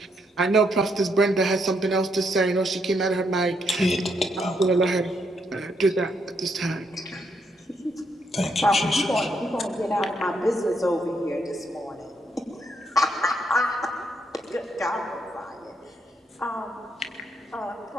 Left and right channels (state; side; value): normal; both; correlation 0.76